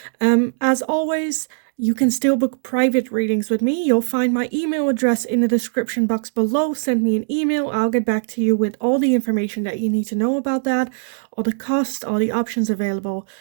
As always, you can still book private readings with me. You'll find my email address in the description box below. Send me an email. I'll get back to you with all the information that you need to know about that, all the costs, all the options available,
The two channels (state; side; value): silent; left; digital silence